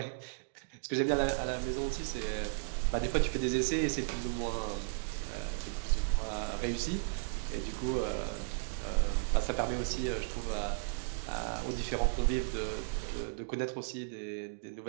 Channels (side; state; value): left; silent; digital silence